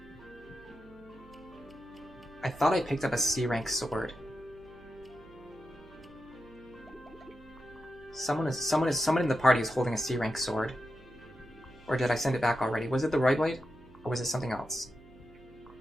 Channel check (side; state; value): right; noise; hum, 23 dB below the sound